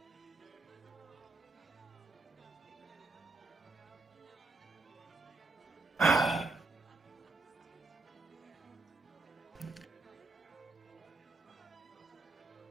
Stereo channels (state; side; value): quieter; left; 3.5 dB